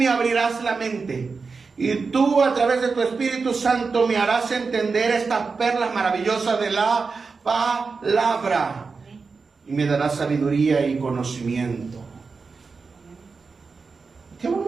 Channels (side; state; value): left; quieter; 4.7 dB